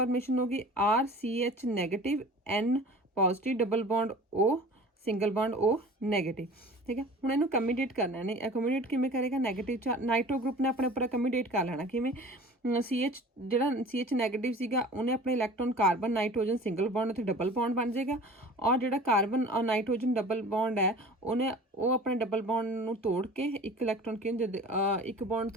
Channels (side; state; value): both; normal; correlation 0.42